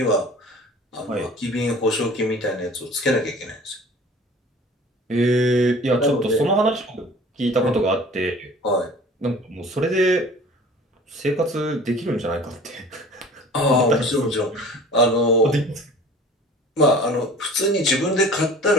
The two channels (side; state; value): both; normal; correlation 0.44